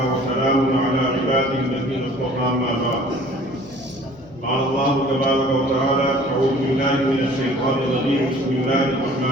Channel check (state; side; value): noise; left; hum, 24 dB below the sound